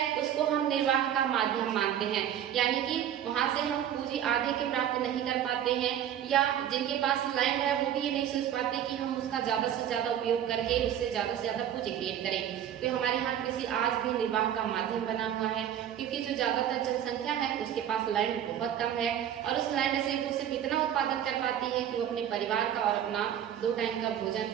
उसको हम निर्वाह का माध्यम मानते हैं, यानी कि वहां से हम पूंजी आधे के प्राप्त नहीं कर पाते हैं, या जिनके पास लैंड है वो भी ये नहीं सोच पाते कि हम उसका ज्यादा से ज्यादा उपयोग करके उससे ज्यादा पूंजी क्रिएट करें। तो हमारे यहाँ कृषि आज भी निर्वाह का माध्यम बना हुआ है, क्योंकि जो ज्यादातर जनसंख्या है उसके पास लैंड बहुत कम है और उस लैंड से वो सिर्फ इतना उत्पादन कर पाती है कि वो अपने परिवार का और अपना 2 टाइम का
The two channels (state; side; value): quieter; left; 10.2 dB